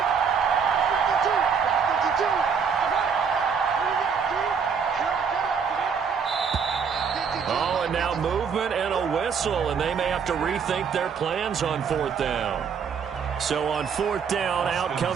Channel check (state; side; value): quieter; left; 6.4 dB